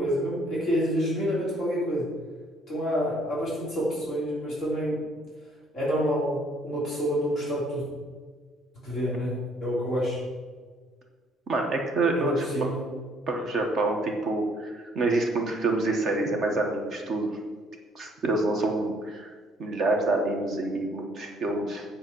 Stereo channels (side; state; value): both; normal; correlation 0.63